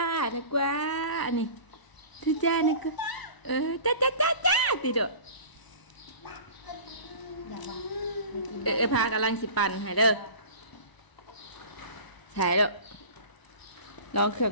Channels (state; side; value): late; right; 1.0 ms